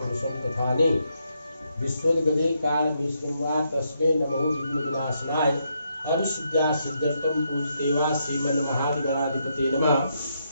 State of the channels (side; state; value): both; inverted; correlation -0.79